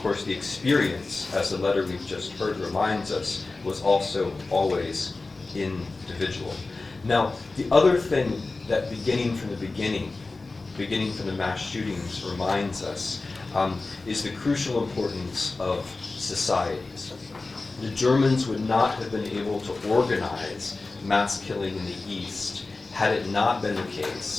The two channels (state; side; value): quieter; right; 3.5 dB